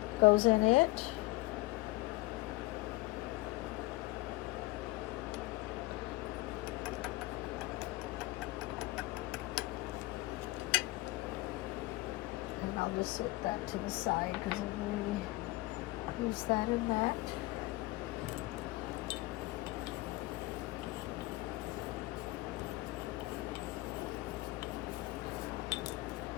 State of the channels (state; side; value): quieter; right; 20.5 dB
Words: goes in it. And I'll just set that to the side because I've already used that in that.